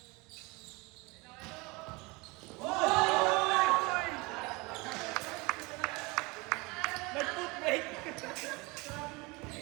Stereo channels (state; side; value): quieter; left; 25.5 dB